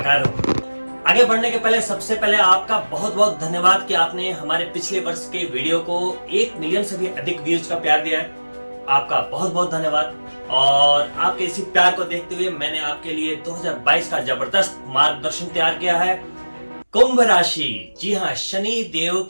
हो। आगे बढ़ने के पहले सबसे पहले आपका बहुत बहुत धन्यवाद कि आपने हमारे पिछले वर्ष के वीडियो को 1 मिलियन से भी अधिक व्यूज का प्यार दिया है। आपका बहुत बहुत धन्यवाद। और आपके इसी प्यार को देखते हुए मैंने आपके लिए 2022 का जबरदस्त मार्गदर्शन तैयार किया है। कुंभ राशि, जी हाँ, शनि देव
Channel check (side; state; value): both; inverted; correlation -1.00